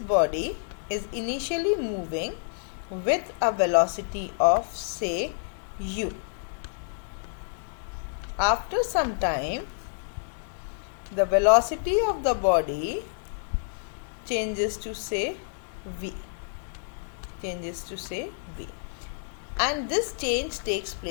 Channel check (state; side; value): silent; right; digital silence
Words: is initially moving with a velocity of say u. After some time, the velocity of the body changes to say v. And this change takes